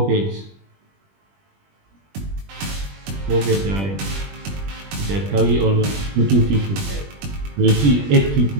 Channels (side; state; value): left; late; 20 ms